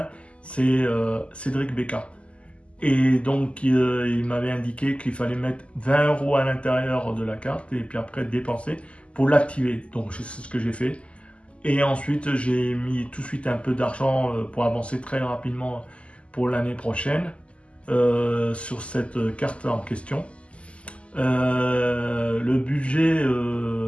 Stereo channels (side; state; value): right; late; 0.057 ms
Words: c'est Cédric Becca. Et donc, il m'avait indiqué qu'il fallait mettre 20 € à l'intérieur de la carte et puis après dépenser pour l'activer. Donc, c'est ce que j'ai fait. Et ensuite, j'ai mis tout de suite un peu d'argent pour avancer très rapidement pour l'année prochaine sur cette carte en question. Le budget,